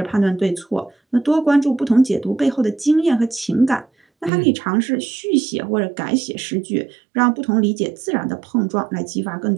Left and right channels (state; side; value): drops out; left; at 4.3 s